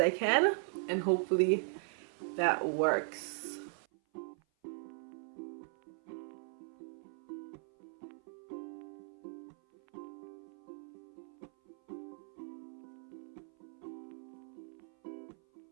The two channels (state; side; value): silent; left; 52 dB below the other